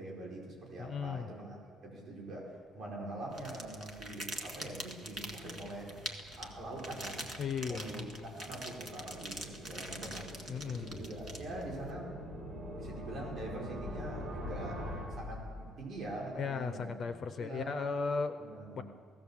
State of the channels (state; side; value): normal; both; correlation 0.67